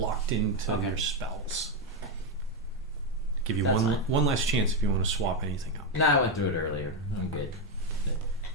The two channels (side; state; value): both; normal; correlation 0.06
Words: into your spells. Give you one last chance if you want to swap anything up. No, I went through it earlier. I'm good.